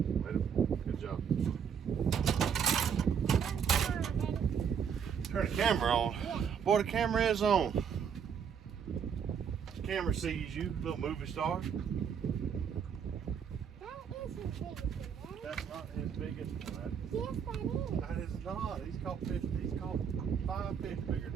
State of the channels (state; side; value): quieter; left; 7.4 dB